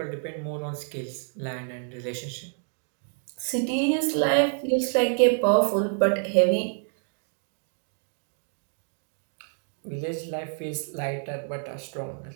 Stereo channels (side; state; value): left; silent; 59 dB below the other